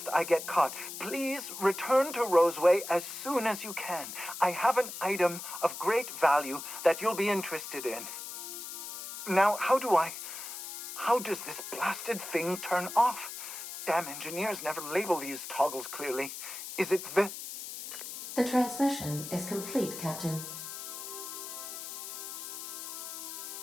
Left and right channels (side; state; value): left; noise; hiss, 8 dB below the sound